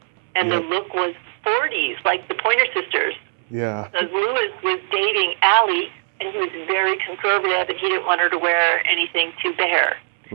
and the look was 40s, like the Pointer Sisters. Yeah. So Louis was dating Allie, and he was very conservative, and he didn't want her to wear anything too bare.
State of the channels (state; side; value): silent; left; 65 dB below the other